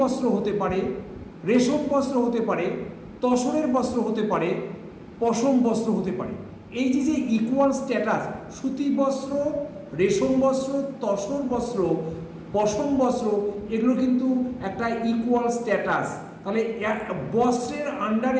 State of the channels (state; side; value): identical; both; correlation 1.00